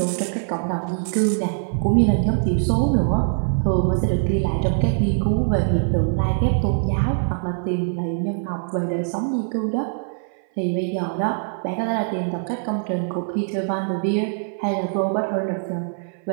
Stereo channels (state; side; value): silent; left; 58 dB below the other